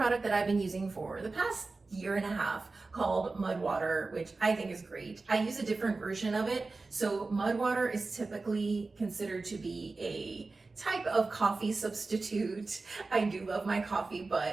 that I've been using for the past year and a half called mud water, which I think is great. I use a different version of it. So mud water is typically considered to be a type of coffee substitute. I do love my coffee,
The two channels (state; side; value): quieter; left; 3.7 dB